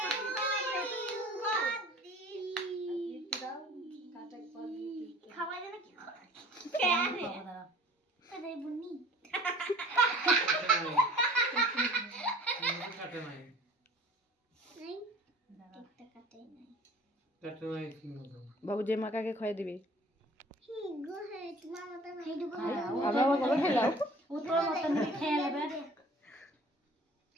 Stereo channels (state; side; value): normal; both; correlation 0.48